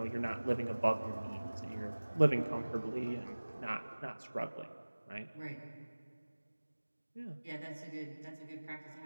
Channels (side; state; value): both; inverted; correlation -1.00